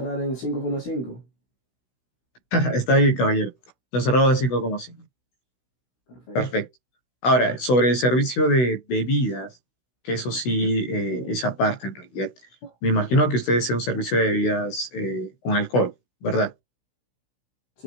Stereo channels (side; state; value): right; late; 16 ms